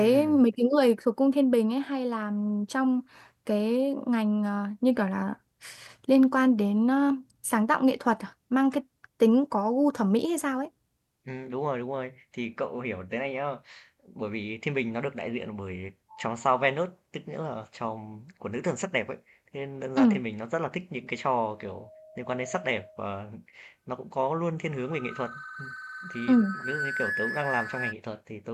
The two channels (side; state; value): both; identical; correlation 1.00